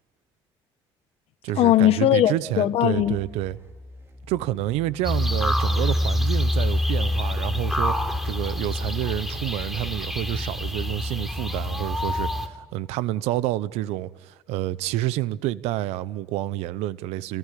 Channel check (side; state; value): both; normal; correlation 0.45